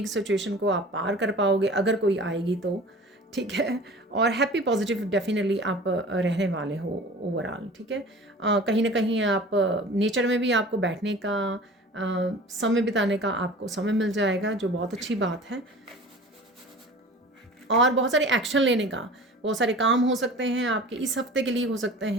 सिचुएशन को आप पार कर पाओगे अगर कोई आएगी तो, ठीक है। और हैप्पी पॉजिटिव डेफिनेटली आप रहने वाले हो ओवरऑल, ठीक है। कहीं ना कहीं आप नेचर में भी आपको बैठने का, समय बिताने का आपको समय मिल जाएगा, जो बहुत अच्छी बात है। और बहुत सारे एक्शन लेने का, बहुत सारे काम हो सकते हैं आपके इस हफ्ते के लिए, हो सकते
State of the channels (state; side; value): normal; both; correlation 0.41